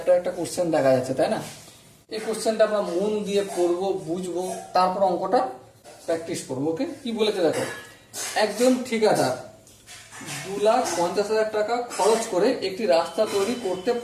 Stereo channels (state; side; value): identical; both; correlation 1.00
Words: একটা কোশ্চেন দেখা যাচ্ছে, তাই না? এই কোশ্চেনটা আমরা মন দিয়ে পড়বো, বুঝবো, তারপর অঙ্কটা প্র্যাকটিস করবো। ওকে, কি বলেছে দেখো। একজন ঠিকাদার 2,50,000 টাকা খরচ করে একটি রাস্তা তৈরি করতে